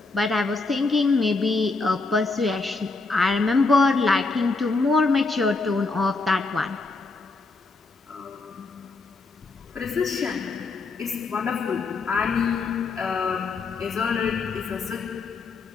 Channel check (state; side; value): quieter; right; 3.8 dB